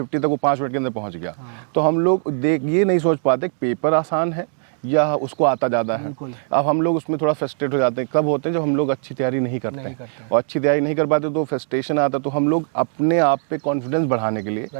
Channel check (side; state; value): left; silent; 65 dB below the other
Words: तक वो 5 मिनट के अंदर पहुंच गया। तो हम लोग ये नहीं सोच पाते कि पेपर आसान है या उसको आता ज़्यादा है। अब हम लोग उसमें थोड़ा फ्रस्ट्रेट हो जाते हैं, कब होते हैं जब हम लोग अच्छी तैयारी नहीं करते हैं। और अच्छी तैयारी नहीं कर पाते तो फ्रस्ट्रेशन आता है। तो हम लोग अपने आप पे कॉन्फिडेंस बढ़ाने के